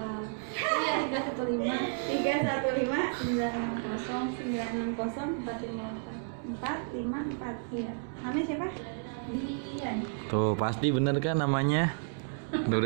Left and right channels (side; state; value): left; silent; digital silence